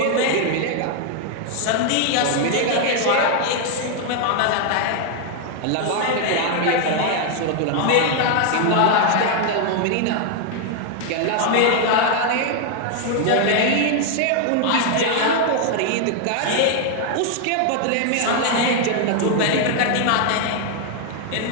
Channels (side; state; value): both; different; correlation 0.00